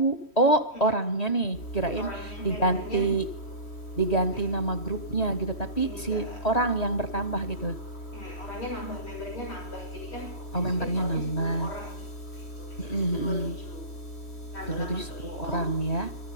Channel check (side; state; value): right; late; 3.1 ms